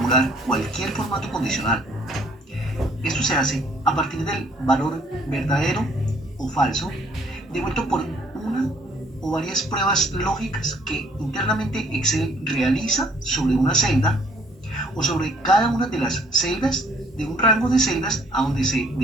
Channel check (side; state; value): both; normal; correlation 0.61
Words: cualquier formato condicional. Esto se hace a partir del valor verdadero o falso devuelto por una o varias pruebas lógicas que internamente Excel realiza sobre una celda o sobre cada una de las celdas de un rango de celdas a donde se